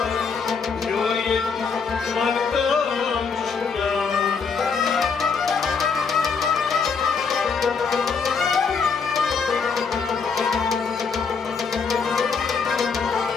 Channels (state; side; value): quieter; right; 5.5 dB